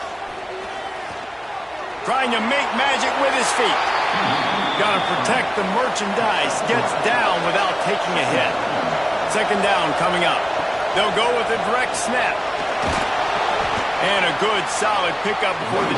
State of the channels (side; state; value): both; identical; correlation 1.00